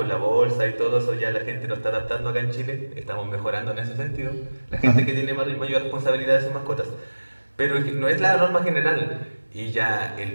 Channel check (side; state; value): both; inverted; correlation -1.00